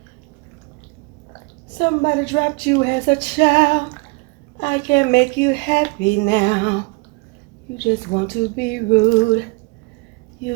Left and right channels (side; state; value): left; quieter; 28.5 dB